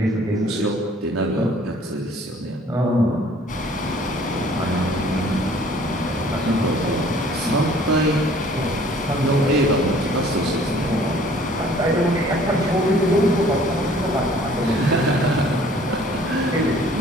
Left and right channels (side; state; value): both; normal; correlation 0.54